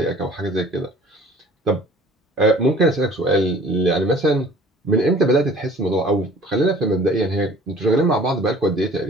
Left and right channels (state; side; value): normal; both; correlation 0.50